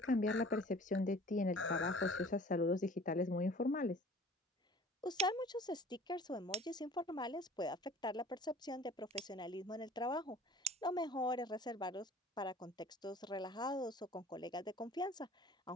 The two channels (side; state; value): both; normal; correlation 0.47